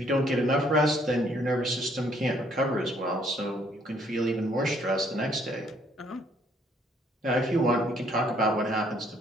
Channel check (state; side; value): normal; both; correlation 0.65